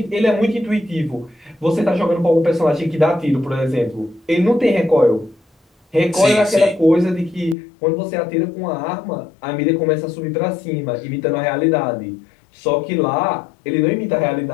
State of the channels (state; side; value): drops out; right; at 7.6 s